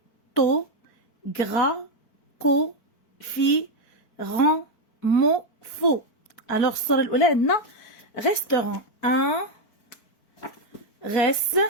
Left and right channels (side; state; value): right; late; 4.5 ms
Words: تو غرا كو في ران مو فو. Alors الصورة الأولى عندنا restaurant. Un reste